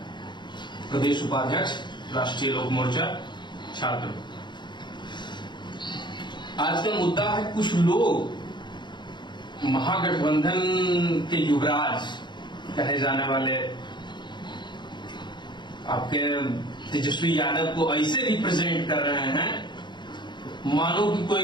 प्रदेश उपाध्यक्ष, राष्ट्रीय लोक मोर्चा छात्र। आज का मुद्दा है कुछ लोग महागठबंधन के युवराज कहे जाने वाले आपके तेजस्वी यादव को ऐसे रिप्रेजेंट कर रहे हैं मानो कि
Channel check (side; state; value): right; late; 0.22 ms